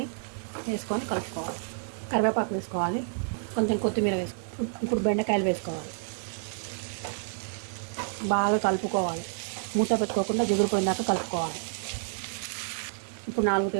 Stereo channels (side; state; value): left; silent; digital silence